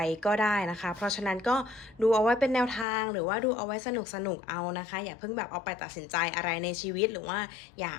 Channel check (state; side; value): drops out; right; at 2.9 s